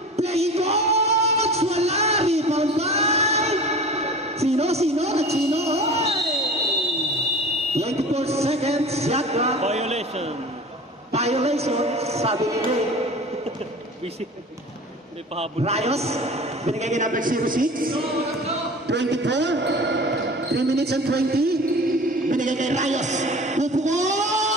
Playing coach, wala. Rebound by Sino? 24 seconds, shot clock. Violation, sabi ni Ray. Easy. Hindi pahabol. Rayos, binigay kay number 06. 24, 3 minutes and 20. Binigay kay Rayos.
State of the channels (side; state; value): both; normal; correlation 0.38